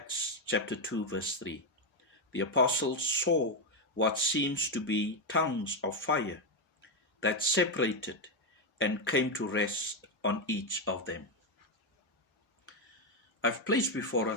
chapter 2 verse 3. The apostles saw what seems to be tongues of fire that separated and came to rest on each of them. I've placed before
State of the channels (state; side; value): normal; both; correlation 0.05